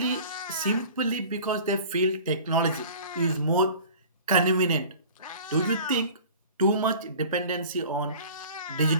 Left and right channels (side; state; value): both; inverted; correlation -0.43